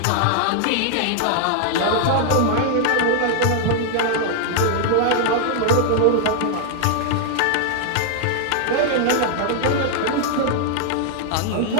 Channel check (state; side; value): different; both; correlation -0.01